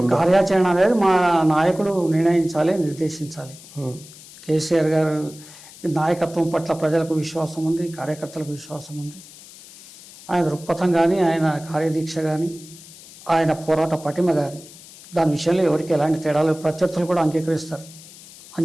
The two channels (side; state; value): left; noise; hiss, 19 dB below the sound